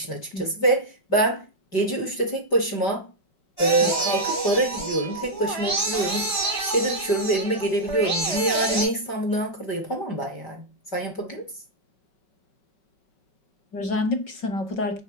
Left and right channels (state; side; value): late; right; 5.0 ms